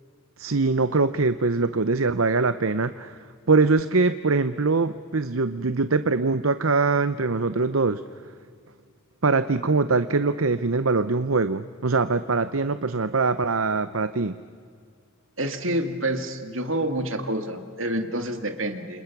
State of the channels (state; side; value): quieter; left; 3.2 dB